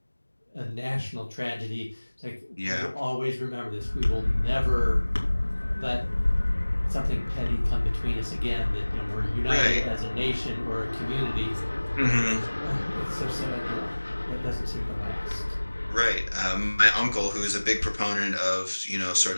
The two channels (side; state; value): both; inverted; correlation -1.00